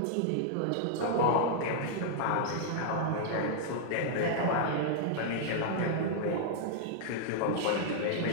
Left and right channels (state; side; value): different; both; correlation -0.01